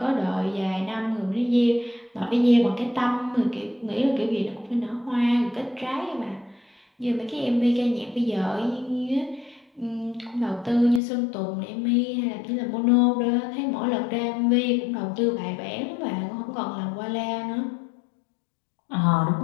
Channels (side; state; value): right; drops out; at 11.0 s